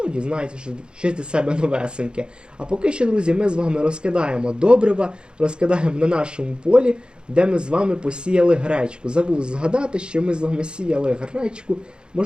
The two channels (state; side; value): late; left; 0.050 ms